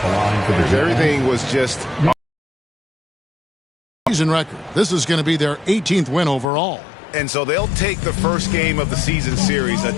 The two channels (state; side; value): drops out; right; at 6.5 s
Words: Everything was just... Season record. This is going to be their 18th win overall. And so they'll take the first game of the season series, a